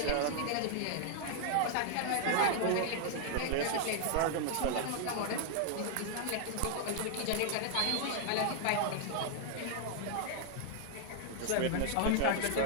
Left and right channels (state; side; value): different; both; correlation 0.00